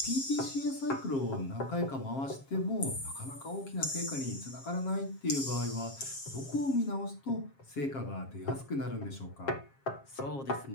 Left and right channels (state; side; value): late; right; 7.4 ms